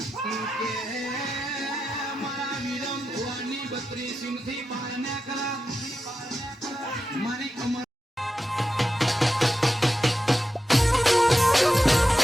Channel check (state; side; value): normal; both; correlation 0.90